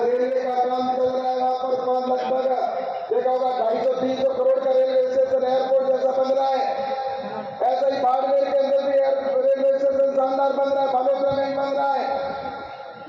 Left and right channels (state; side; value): identical; both; correlation 1.00